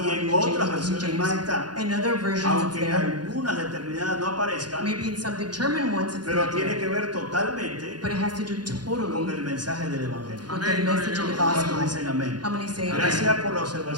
out en in the otras King versiones más James. está, In other versions it's aunque en there. algunas determinadas no aparezcan, Maybe in some determined ones it's pero not tiene there. que ver totalmente But it has to do con totally el mensaje del Evangelio. with the message of the ¿Cuántos gospel. dicen amén? How many say amen? Gracias por la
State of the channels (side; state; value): left; late; 0.70 ms